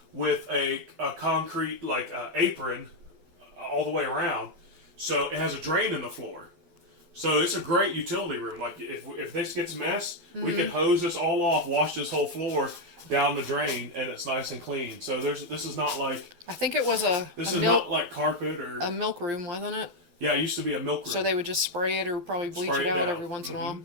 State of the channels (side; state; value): left; late; 11 ms